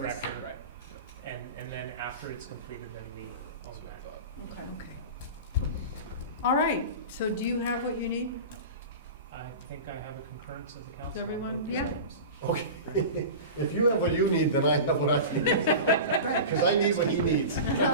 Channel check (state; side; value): inverted; both; correlation -0.30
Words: And then after it's completed, then we own that. Okay. All right, so do you have what you need? I think I have a concurrence of the council. Does everyone- on both these yeah. items. Okay. If you have what you need, then I have what I need. Because I need what he needs.